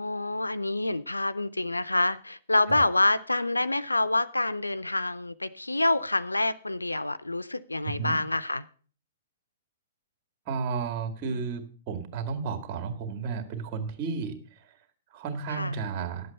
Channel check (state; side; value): inverted; both; correlation -0.86